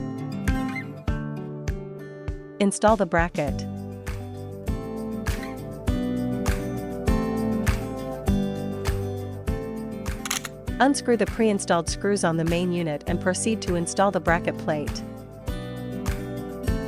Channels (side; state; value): both; identical; correlation 1.00